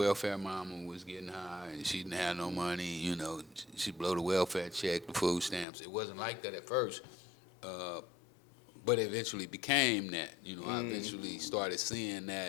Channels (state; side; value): drops out; right; at 5.7 s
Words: mama was getting high and she didn't have no money. You know, she blow the welfare check, the food stamps. It wasn't like that at first. But it eventually became that. You know, I eventually started seeing